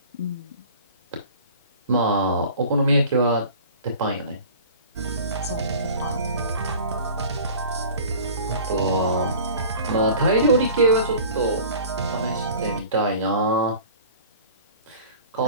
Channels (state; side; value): inverted; both; correlation -0.43